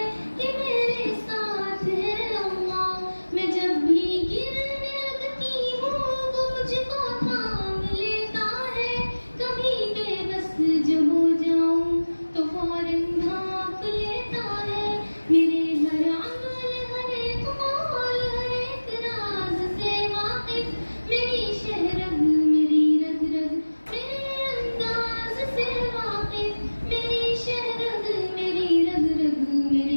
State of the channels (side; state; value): both; inverted; correlation -1.00